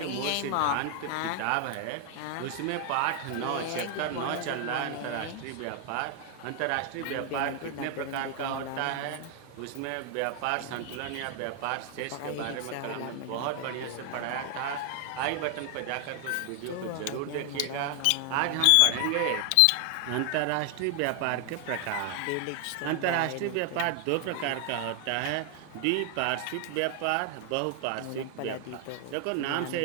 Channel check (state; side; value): different; both; correlation 0.00